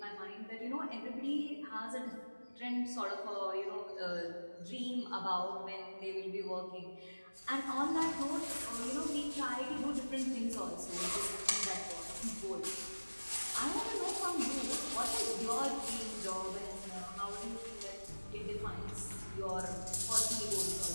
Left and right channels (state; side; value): inverted; both; correlation -1.00